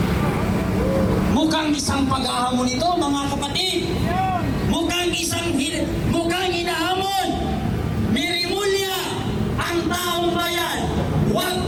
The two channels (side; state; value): both; identical; correlation 1.00